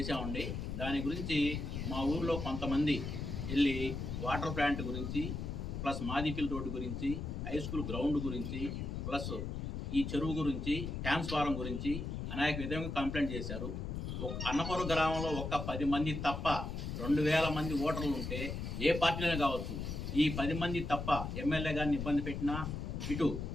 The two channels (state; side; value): noise; left; rumble, 4 dB below the sound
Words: దాని గురించి మా ఊర్లో కొంతమంది వెళ్ళి వాటర్ ప్లాంట్ గురించి, ప్లస్ మాదిపిల్లి రోడ్డు గురించి, హై స్కూల్ గ్రౌండ్ గురించి, ప్లస్ ఈ చెరువు గురించి, ట్రాన్స్ఫారం గురించి అనేక విధంగా కంప్లైంట్ చేశారు. అన్నపురం గ్రామంలో ఒక్క 10 మంది తప్ప 2000 మంది ఓటర్లు ఉంటే ఏ పార్టీలోనే కావచ్చు, ఈ 10 మంది తప్ప ఎమ్మెల్యే గారిని ఇబ్బంది పెట్టినా, ఇటు